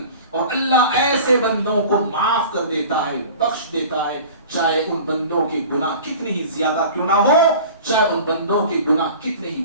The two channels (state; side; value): inverted; both; correlation -0.41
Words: اور اللہ ایسے بندوں کو معاف کر دیتا ہے, بخش دیتا ہے, چاہے ان بندوں کے گناہ کتنے ہی زیادہ کیوں نہ ہو, چاہے ان بندوں کے گناہ کتنے ہی